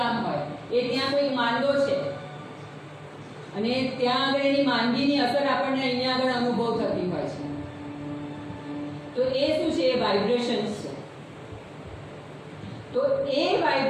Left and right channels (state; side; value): identical; both; correlation 1.00